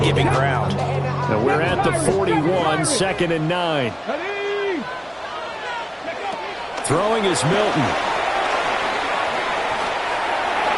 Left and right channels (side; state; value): both; identical; correlation 1.00